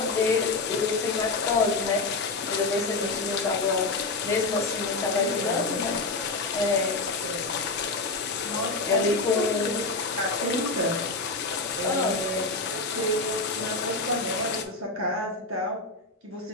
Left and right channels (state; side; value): quieter; right; 3.5 dB